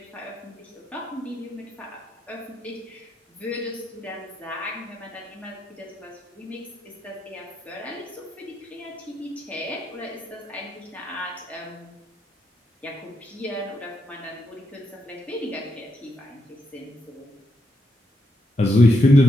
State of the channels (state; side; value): normal; both; correlation 0.81